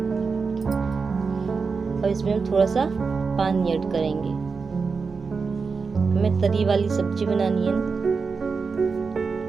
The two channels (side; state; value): left; quieter; 4.9 dB